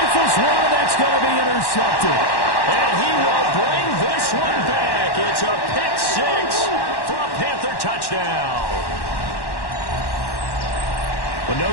rifles one, that's going to be intercepted. And he will bring this one back. It's a pick six for a Panther touchdown. But no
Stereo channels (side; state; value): right; late; 1.1 ms